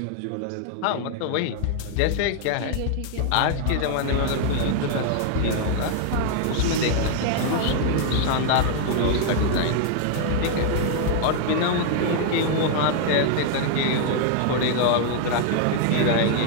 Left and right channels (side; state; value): both; different; correlation 0.00